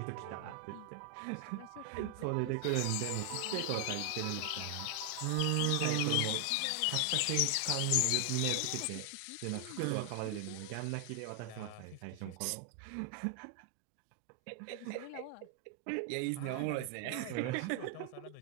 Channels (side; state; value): both; different; correlation 0.00